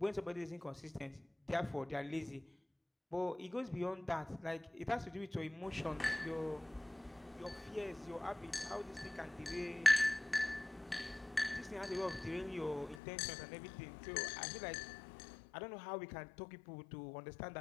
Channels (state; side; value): drops out; right; at 13.0 s